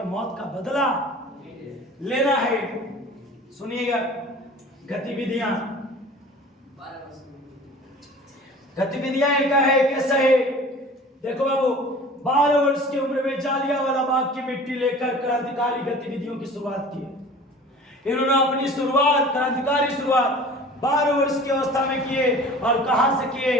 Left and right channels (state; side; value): normal; both; correlation 0.43